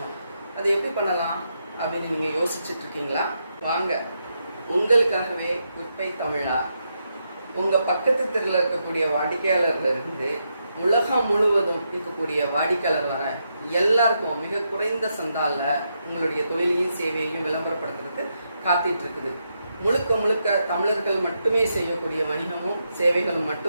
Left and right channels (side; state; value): both; inverted; correlation -0.82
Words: அது எப்படி பண்ணலாம் அப்படின்னு நீங்கள் யோசிச்சுட்ருக்கீங்களா? வாங்க, உங்களுக்காகவே குட்பை தமிழா உங்கள் பக்கத்து தெருவில் இருக்கக்கூடிய வாடிக்கையாளர்லேருந்து உலகம் முழுவதும் இருக்கக்கூடிய வாடிக்கையாளர் வர எல்லாருக்கும் மிக குறைந்த சந்தாலில் உங்களுடைய தொழிலையும் சேவையையும் விளம்பரப்படுத்துறதுக்கு காத்துட்டு இருக்குது. முழுக்க முழுக்க தமிழர்கள் மட்டுமே செய்யக்கூடிய வணிகமும் சேவைகளும்